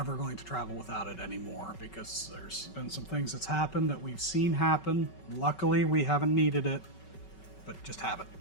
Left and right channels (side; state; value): right; late; 5.3 ms